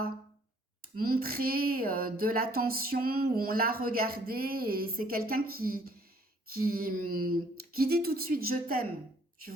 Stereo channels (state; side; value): normal; both; correlation 0.61